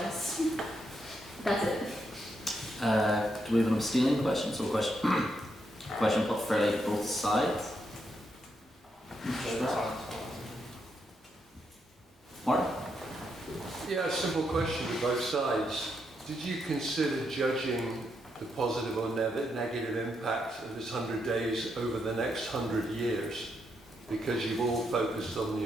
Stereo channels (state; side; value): normal; both; correlation 0.80